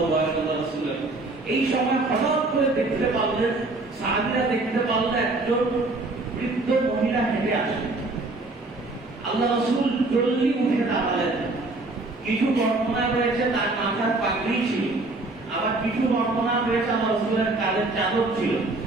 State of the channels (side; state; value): left; quieter; 3.1 dB